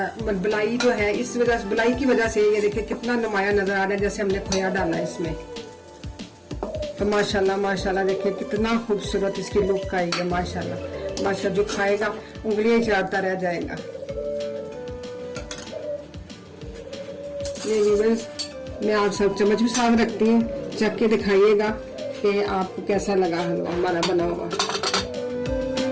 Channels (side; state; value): both; identical; correlation 1.00